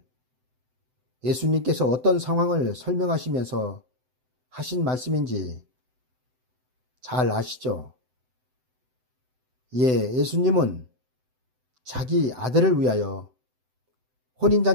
예수님께서 어떤 상황을 설명하시면서 하신 말씀인지 잘 아시죠? 예수님은 자기 아들을 위하여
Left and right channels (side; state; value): left; late; 7.9 ms